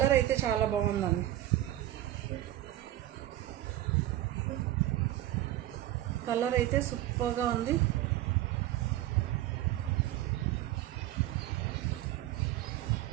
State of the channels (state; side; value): quieter; left; 14.2 dB